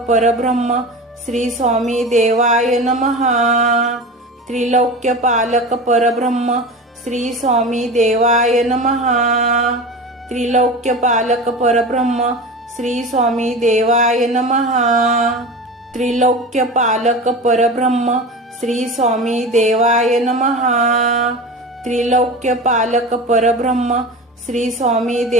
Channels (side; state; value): both; normal; correlation 0.30